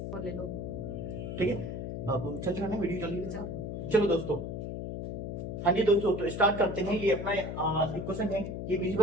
और ले लो। ठीक है। अब चल रहा है वीडियो, चलिए अच्छा। चलो दोस्तों, हाँ जी दोस्तों, तो स्टार्ट करते हैं। ये अपना एक क्वेश्चन है, ये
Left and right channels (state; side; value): noise; left; hum, 5 dB below the sound